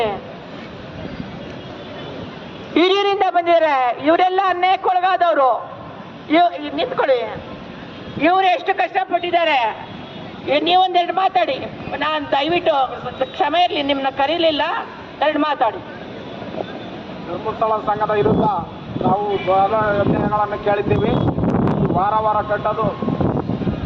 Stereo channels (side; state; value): both; identical; correlation 1.00